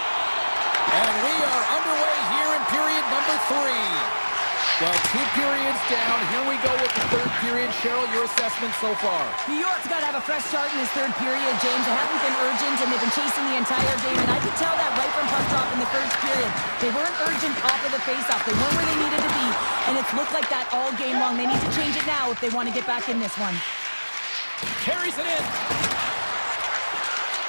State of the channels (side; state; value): both; inverted; correlation -1.00